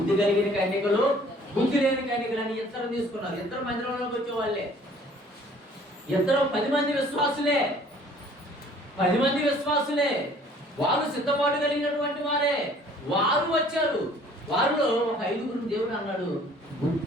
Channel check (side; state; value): both; normal; correlation 0.54